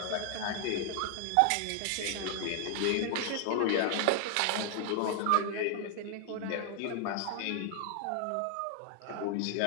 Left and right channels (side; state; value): both; different; correlation 0.00